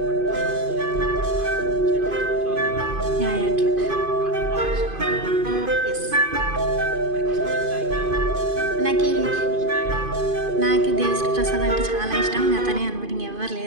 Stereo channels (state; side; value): late; left; 2.5 ms